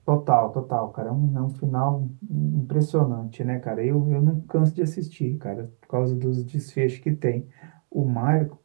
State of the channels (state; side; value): silent; left; 61 dB below the other